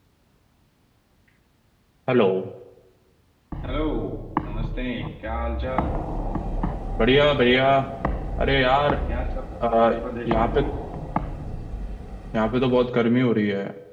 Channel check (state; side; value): identical; both; correlation 1.00